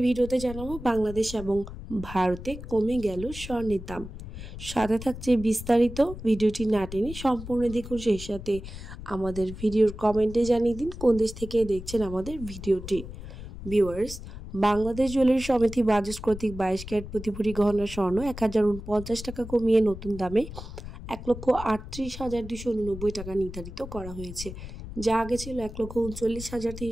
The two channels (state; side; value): noise; left; rumble, 11 dB below the sound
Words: ভিডিওতে জানাবো বাংলাদেশ এবং ভারতে কমে গেল স্বর্ণের দাম। সাথে থাকছে বিস্তারিত, ভিডিওটি না টেনে সম্পূর্ণ দেখুন। সেই সাথে আমাদের ভিডিওর কমেন্টে জানিয়ে দিন কোন দেশ থেকে দেখছেন আমাদের ভিডিওটি। ভিউয়ার্স, বাংলাদেশ জুয়েলারি সমিতি বাজাজ কর্তৃক 22 ক্যারেট প্রতি ভরি গহনা স্বর্ণ 1049 টাকা কমিয়ে নতুন দামে 1,38,289 টাকা নির্ধারিত করা হয়েছে, যা আগে ছিল